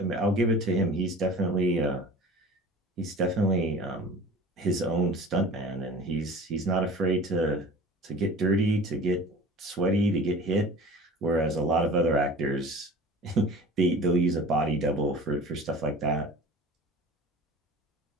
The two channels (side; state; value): both; normal; correlation 0.41